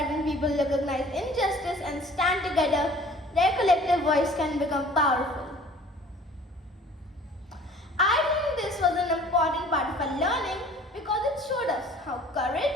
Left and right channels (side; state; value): both; normal; correlation 0.49